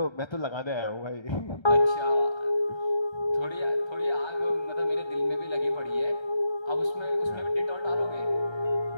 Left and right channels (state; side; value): late; right; 1.3 ms